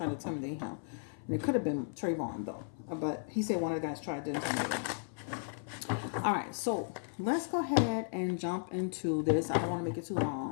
to intimidate him. And it could have been Trayvon though. But he said one of the guys tried to intimidate him. All right, so let's go ahead and jump into this. I don't want to make it too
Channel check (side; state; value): right; silent; 54 dB below the other